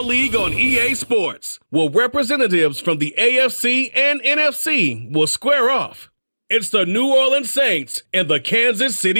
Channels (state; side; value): inverted; both; correlation -1.00